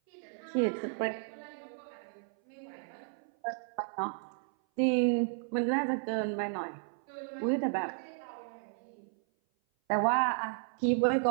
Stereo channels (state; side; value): silent; left; 55 dB below the other